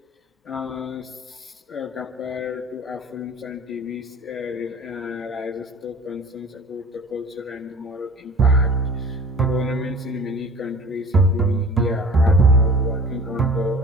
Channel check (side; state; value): both; normal; correlation 0.44